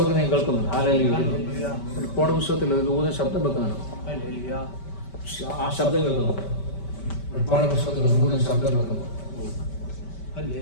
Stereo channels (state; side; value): late; right; 5.2 ms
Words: ഞാൻ കേൾക്കുന്നുണ്ട്. വെളിപ്പാട് പുസ്തകത്തിൽ ഒരു ദൂതൻ ശബ്ദം വെക്കുന്നുണ്ട്. ആ ശബ്ദം കേൾക്കുന്നു. വെളിപ്പാട് പുസ്തകത്തിൽ ദൂതൻ ശബ്ദം വെക്കുന്നു.